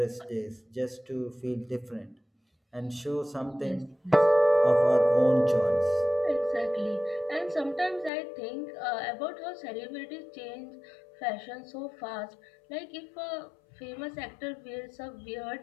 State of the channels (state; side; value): drops out; right; at 8.1 s